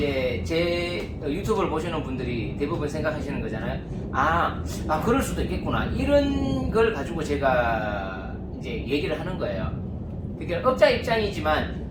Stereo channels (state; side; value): identical; both; correlation 1.00